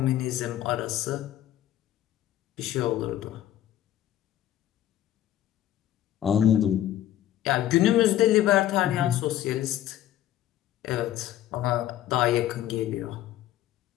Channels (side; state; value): right; quieter; 12.6 dB